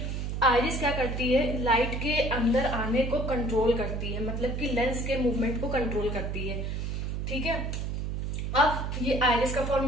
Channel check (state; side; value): noise; right; hum, 2 dB below the sound